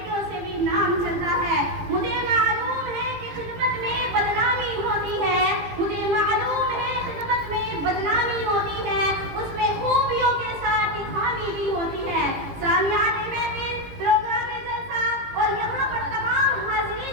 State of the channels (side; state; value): left; late; 18 ms